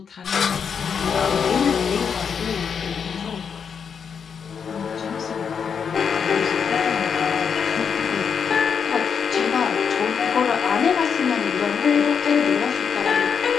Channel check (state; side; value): quieter; right; 6.7 dB